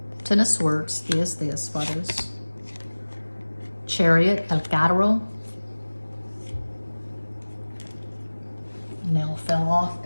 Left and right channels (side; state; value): both; inverted; correlation -1.00